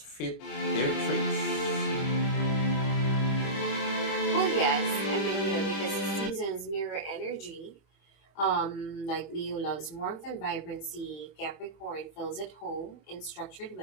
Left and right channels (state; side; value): late; right; 25 ms